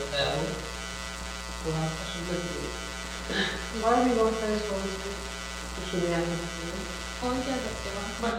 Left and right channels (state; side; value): noise; right; rumble, 24 dB below the sound